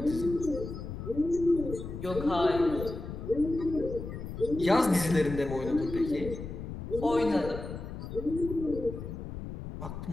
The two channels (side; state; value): left; noise; rumble, 8 dB below the sound